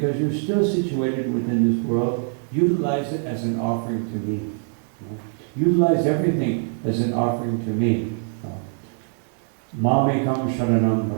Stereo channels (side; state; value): left; silent; 62 dB below the other